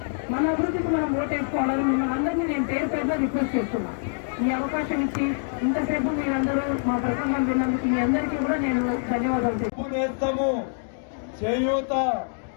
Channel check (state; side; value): silent; right; digital silence